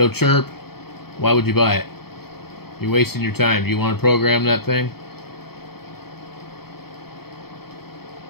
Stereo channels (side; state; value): right; late; 0.95 ms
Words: chirp. Why would you buy it? You're wasting your time. Do you want to program that thing?